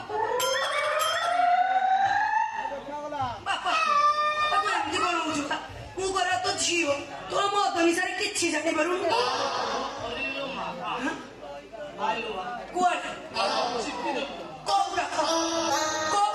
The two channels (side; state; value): both; identical; correlation 1.00